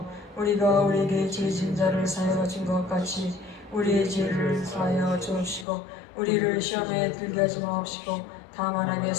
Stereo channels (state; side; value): drops out; right; at 5.7 s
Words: 우리가 우리에게 죄진 자를 사하여 준 것 같이 우리의 죄를 사하여 주옵시고 우리를 시험에 들게 하지 마옵시고 다만